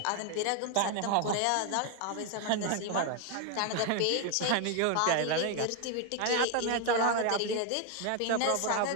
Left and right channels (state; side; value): different; both; correlation 0.01